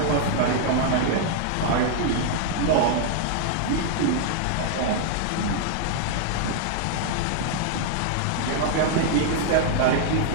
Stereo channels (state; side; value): different; both; correlation 0.00